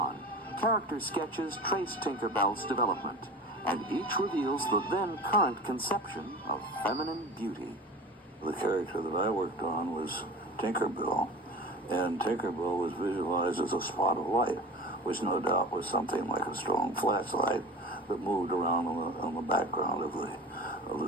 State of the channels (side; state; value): both; normal; correlation 0.35